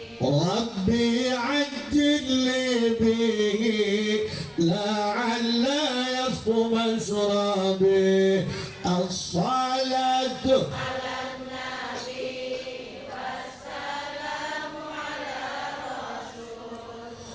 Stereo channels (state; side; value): identical; both; correlation 1.00